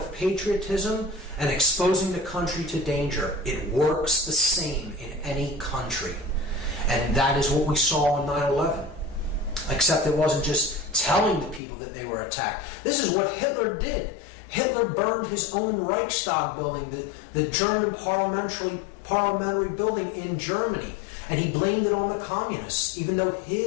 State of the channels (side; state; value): right; drops out; at 11.6 s